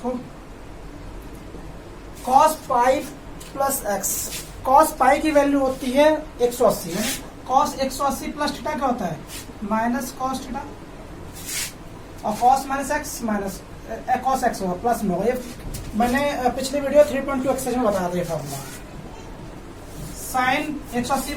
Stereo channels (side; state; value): both; identical; correlation 1.00